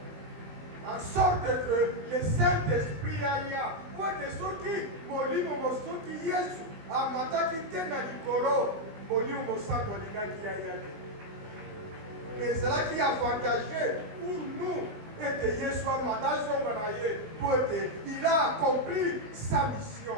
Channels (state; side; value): late; left; 19 ms